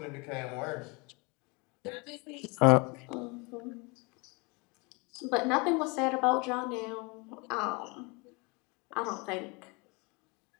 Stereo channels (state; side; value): quieter; right; 28.6 dB